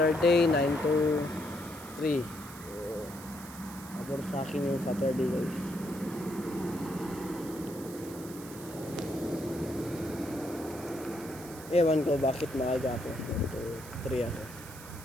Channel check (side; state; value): right; noise; hiss, 16 dB below the sound